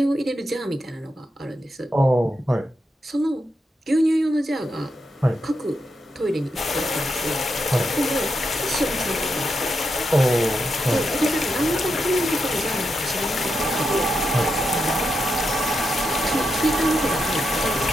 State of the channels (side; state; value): both; normal; correlation 0.84